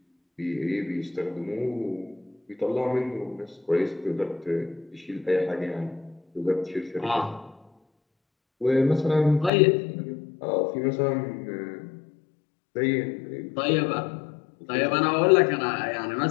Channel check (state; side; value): drops out; right; at 9.5 s